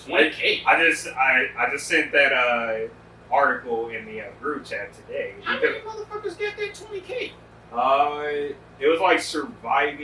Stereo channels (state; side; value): identical; both; correlation 1.00